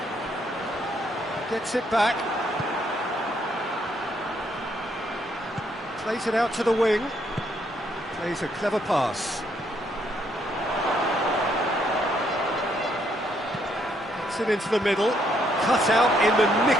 Gets it back. Plays it out to the wing. Plays a clever pass. It into the middle, cut out in the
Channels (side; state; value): both; normal; correlation 0.72